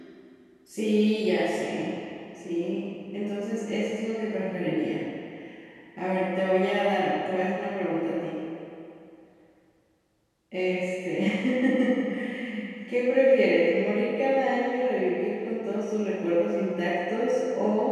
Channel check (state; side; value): identical; both; correlation 1.00